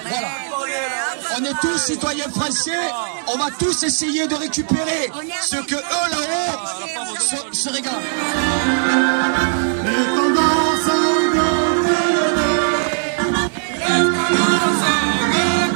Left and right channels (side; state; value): left; silent; digital silence